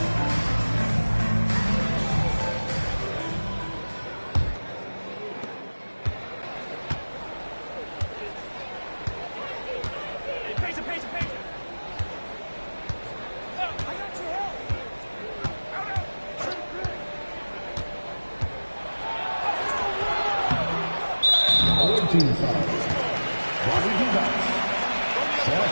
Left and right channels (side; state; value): both; inverted; correlation -1.00